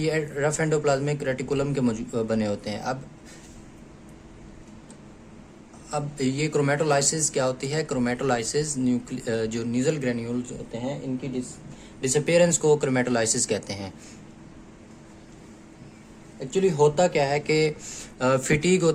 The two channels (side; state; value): both; identical; correlation 1.00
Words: रफ एंडोप्लाज्मिक रेटिकुलम के बने होते हैं। अब ये क्रोमेटोलाइसिस क्या होती है? क्रोमेटोलाइसिस जो नीजल ग्रैन्यूल्स होते हैं इनकी डिसअपीयरेंस को क्रोमेटोलाइसिस कहते हैं। एक्चुअली होता क्या है कि फिटीग